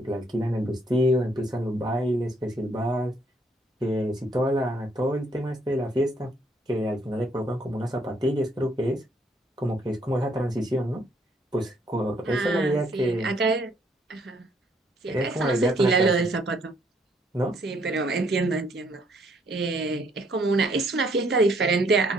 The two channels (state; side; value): normal; both; correlation 0.68